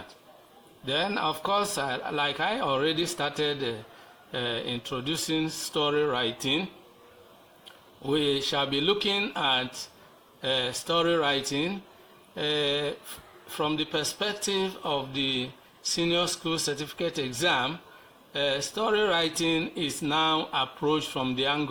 Then, of course, like I already started introducing story writing, we shall be looking at story writing from the perspective of the senior school certificate exam. Story writing is now approached from the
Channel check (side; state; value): both; identical; correlation 1.00